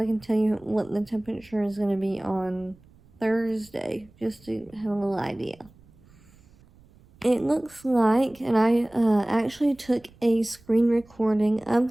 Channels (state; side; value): noise; right; rumble, 27 dB below the sound